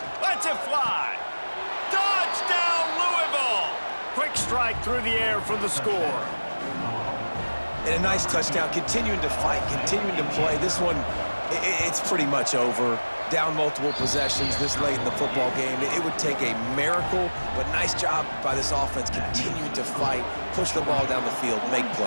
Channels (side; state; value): both; inverted; correlation -1.00